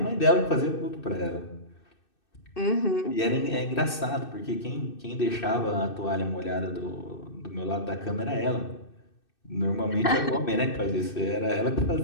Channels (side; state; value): right; late; 2.6 ms